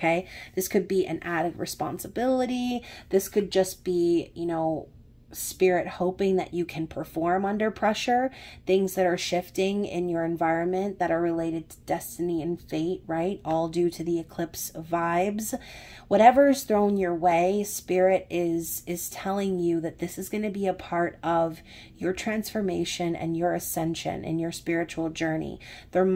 This could be an added responsibility. This could just be, you know, Spirit hoping that you can perform under pressure, things that are shifting in your environment that are related to destiny and fate, right? All due to the eclipse vibes. Whatever is thrown your way, Spirit is telling you that this is going to be a part of your transformation and your ascension in your spiritual journey. There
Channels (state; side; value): identical; both; correlation 1.00